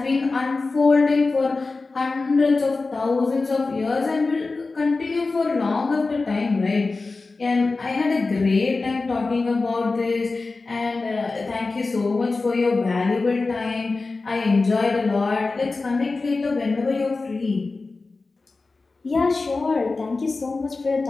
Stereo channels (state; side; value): quieter; right; 3.7 dB